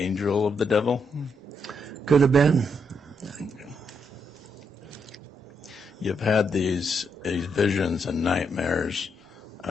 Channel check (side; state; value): both; normal; correlation 0.78